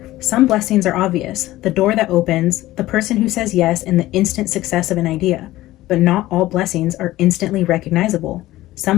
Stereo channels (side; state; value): right; quieter; 16.5 dB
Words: some blessings are obvious, the door that opens, the person who says yes, and the instant success of an idea. But not all blessings are instantly recognizable. Some